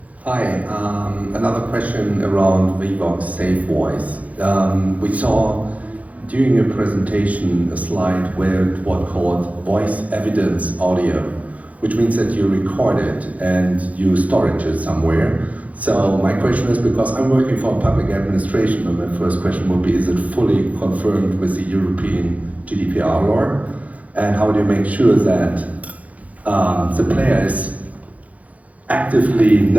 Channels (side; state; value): left; late; 0.070 ms